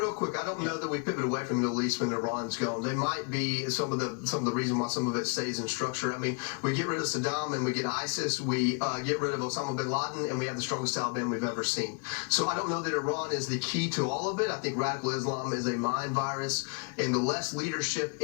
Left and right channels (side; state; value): right; quieter; 36.6 dB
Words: quick, I don't know that we pivot away from the Middle East when Iran's gone. They might be some of the reason why some of it stays in structure. I mean, we get rid of Saddam and we get ISIS, we get rid of Osama bin Laden, and we have the strongest Taliban we've ever seen. So I don't know that Iran is the key to all of it. I think radical Islam is a mind virus, and the less leadership